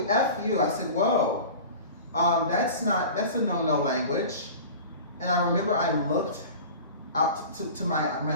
F you. I said, whoa, that's a no-no language. And I remember I looked out to my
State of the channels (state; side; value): inverted; both; correlation -0.37